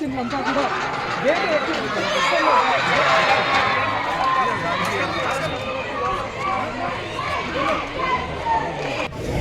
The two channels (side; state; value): both; identical; correlation 1.00